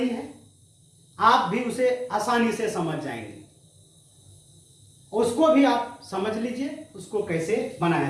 है, आप भी उसे आसानी से समझ जाएंगे। उसको भी आप समझ लीजिए उसको कैसे बनाया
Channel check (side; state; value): both; identical; correlation 1.00